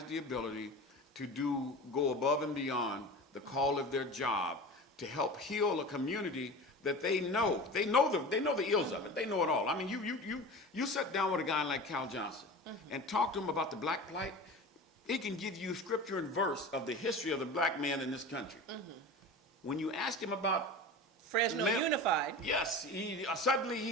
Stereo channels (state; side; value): normal; both; correlation 0.33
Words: the ability to go above and beyond the call of their job to help heal a community that they know. They know the ills of it. They know it all. I mean, you sit down with a guy like Cal Johnson and talk to him about the black plight. He can give you scripture and verse of the history of the black man in this country. When you ask him about Fresno Unified. Yes,